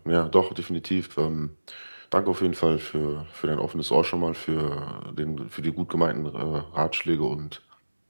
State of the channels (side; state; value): both; inverted; correlation -1.00